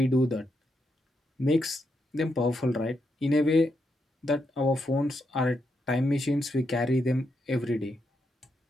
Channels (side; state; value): both; normal; correlation 0.81